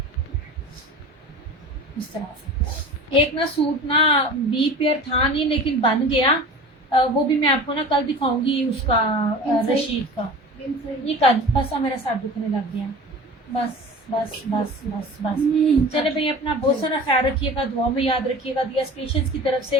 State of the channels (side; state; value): both; normal; correlation 0.38